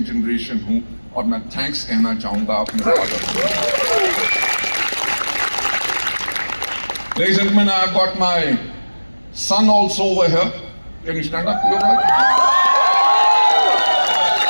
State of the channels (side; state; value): both; inverted; correlation -1.00